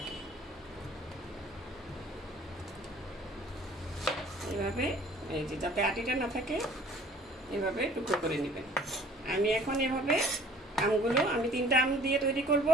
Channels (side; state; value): both; normal; correlation 0.51